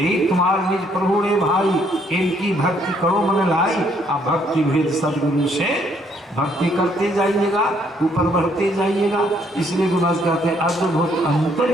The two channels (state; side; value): normal; both; correlation 0.68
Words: तुम्हारे निज प्रभु रे भाई, इनकी भक्ति करो मन लाई। अब भक्ति भेद सदगुरु से भक्ति करते जाइएगा, ऊपर बढ़ते जाइएगा। इसलिए गुरु महाराज कहते हैं, अद्भुत